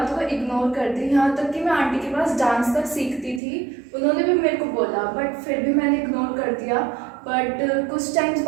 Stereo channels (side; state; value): left; drops out; at 3.4 s